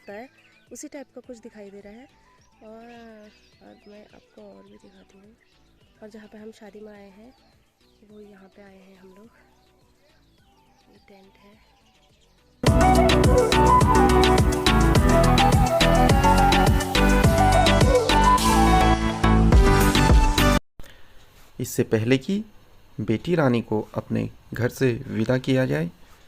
है, उसी टाइप का कुछ दिखाई दे रहा है। और मैं आपको और भी दिखाती हूँ। और जहाँ पे हम शादी में आए हैं वो यहाँ पे आए हैं हम लोग। ये टेंट है। इससे पहले कि बेटी रानी को अपने घर से विदा किया जाए,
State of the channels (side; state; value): both; identical; correlation 1.00